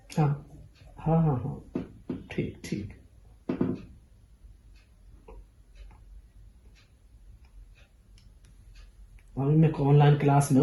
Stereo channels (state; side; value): identical; both; correlation 1.00